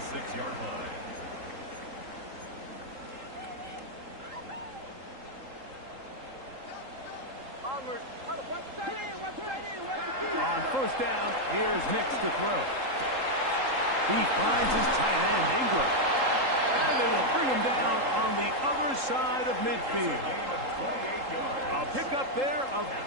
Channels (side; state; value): left; late; 3.8 ms